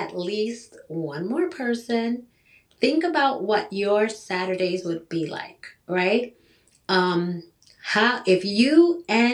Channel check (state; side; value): identical; both; correlation 1.00